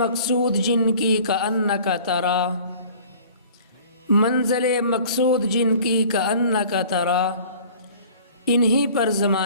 جن کی کأنک ترا، منزل مقصود جن کی کأنک ترا، انہی پر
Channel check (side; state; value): both; inverted; correlation -0.48